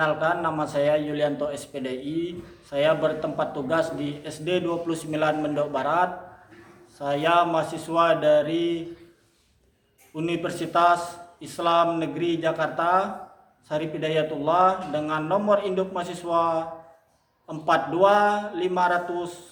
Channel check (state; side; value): identical; both; correlation 1.00